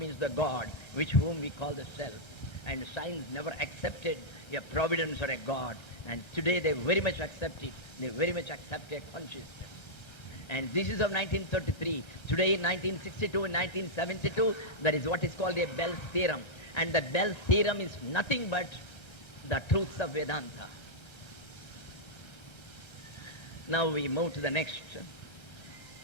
the God, which whom we call the self. And science never accepted a providence or a God. And today they very much accept it. They very much accept a consciousness. And this is of 1933. Today in 1962 and 1972, there is what is called a Bell's theorem. And the Bell's theorem is nothing but the truths of Vedanta. Now we move to the next.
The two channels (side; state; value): right; late; 1.3 ms